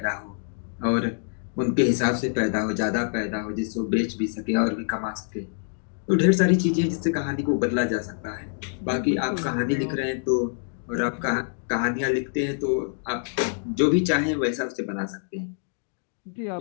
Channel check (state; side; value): silent; right; digital silence